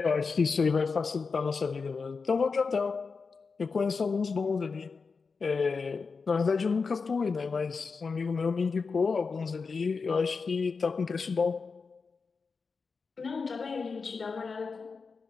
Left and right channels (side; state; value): right; quieter; 4.8 dB